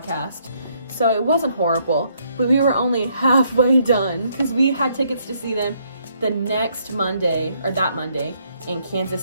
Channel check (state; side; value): inverted; both; correlation -0.71